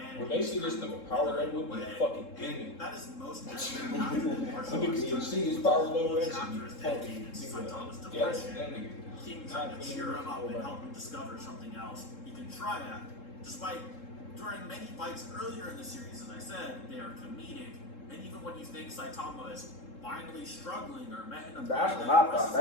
When they see this nigga power level, with a fucking demon. That is most evident after the martial When arts. niggas see his power level, that shit Chapter be is fucking dedicated to Saitama's nigga. Yeah, depression. that nigga. King trying to cheer him up and help him discover something else he can try at. Despite during many fights earlier in the series, as I said, they are comedic, and even when you think Saitama is finally struggling or met in a That's when I thought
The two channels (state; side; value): late; right; 3.7 ms